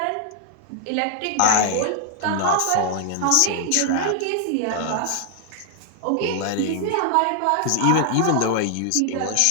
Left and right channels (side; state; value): both; different; correlation 0.00